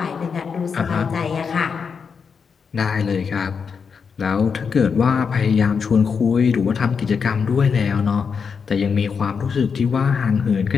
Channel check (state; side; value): quieter; right; 6.0 dB